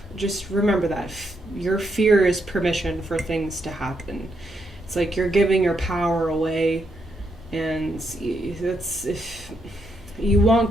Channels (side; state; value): both; normal; correlation 0.79